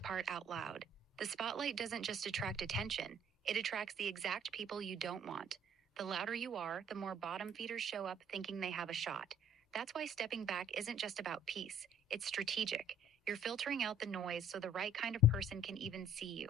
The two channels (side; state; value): both; normal; correlation 0.58